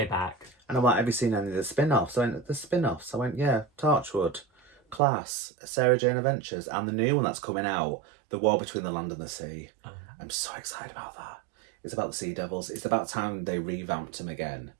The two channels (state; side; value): drops out; left; at 5.0 s